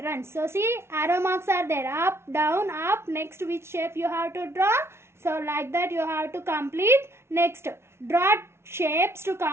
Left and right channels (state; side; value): late; left; 0.12 ms